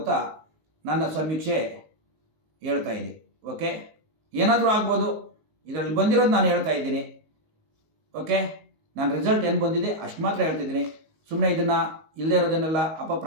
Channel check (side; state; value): left; late; 19 ms